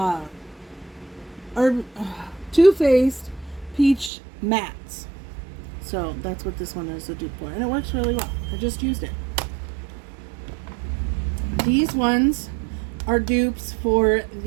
Too Faced Peach Mattes. So that's what this one is a dupe for. And it works really well. I just used it. These ones are dupes for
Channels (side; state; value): left; drops out; at 4.1 s